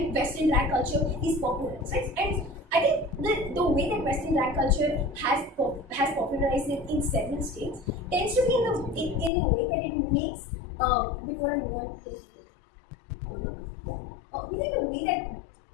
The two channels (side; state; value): right; drops out; at 9.3 s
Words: Western drag culture is popularized, right? And I think the way that Western drag culture has popularized it in several states tends to be in the way that it makes. Before I move on, yes, yeah. We think the